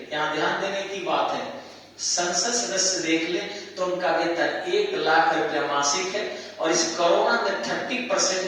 यहाँ ध्यान देने की बात है, संसद सदस्य देख ले तो उनका वेतन 1 लाख रुपया मासिक है और इस कोरोना में 30%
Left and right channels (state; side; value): identical; both; correlation 1.00